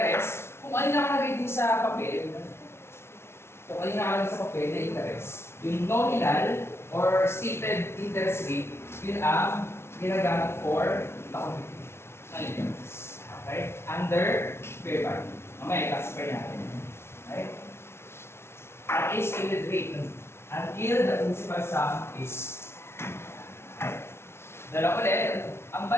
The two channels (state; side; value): late; right; 0.12 ms